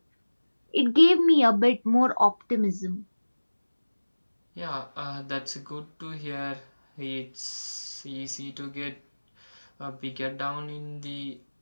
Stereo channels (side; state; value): both; inverted; correlation -1.00